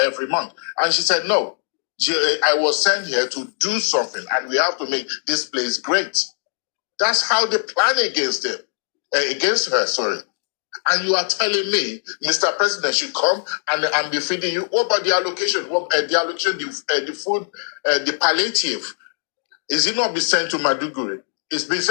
every month. And she said, no. I was sent here to do something, and we have to make this place great. That's how they plan against her, sorry. And you are telling me, Mr. President should come and be feeding you. What about the allocation? The food, the palliative? Is it not be sent to Maduguri? It's been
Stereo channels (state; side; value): silent; right; digital silence